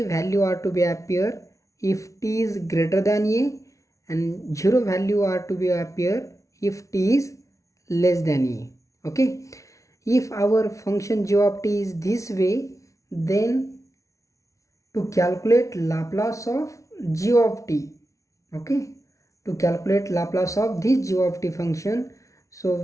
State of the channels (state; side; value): late; right; 0.15 ms